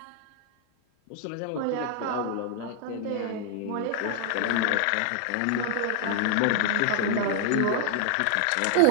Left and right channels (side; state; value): both; different; correlation 0.00